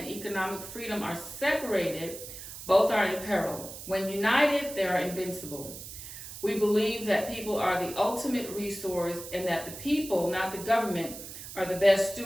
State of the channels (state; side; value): noise; right; hiss, 11 dB below the sound